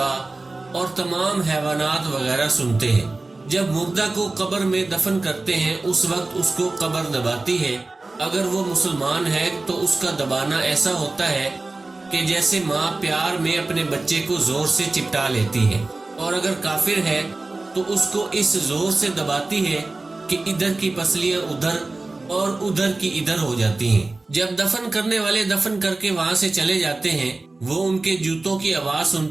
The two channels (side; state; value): left; quieter; 3.3 dB